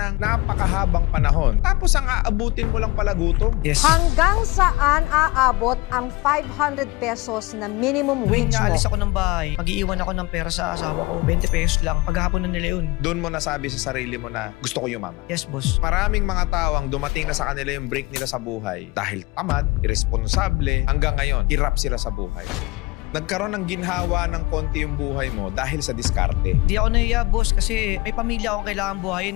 napakahabang panahon. Tapos ang aabutin mo lang pala gutom. Yes. Hanggang saan aabot ang 500 pesos na minimum Tuwing wage mo? naalis ako ng bahay, mag-iiwan ako ng pera sa asawa ko, 20 pesos lang. Paghapon na nila yun. Doon mo nasabi sa sarili mo na gusto ko yumaman. Yes, boss. Maraming mga tao ang dumating na sa kanila yung break nila sa buhay dahil tamad, irresponsable, hanggang ngayon, hirap sila sa buhay. Nagkaroon ng ginhawa ng konti yung buhay mo dahil sa diskarte. Hindi ako nahiya, boss, kasi may pamilya akong kailangan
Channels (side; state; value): right; quieter; 22.0 dB